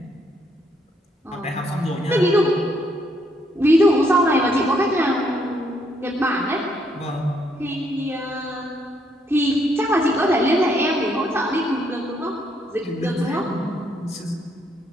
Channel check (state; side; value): normal; both; correlation 0.72